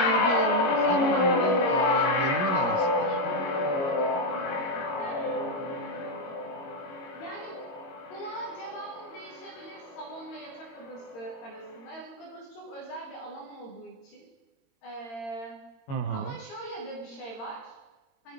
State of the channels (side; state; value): right; late; 22 ms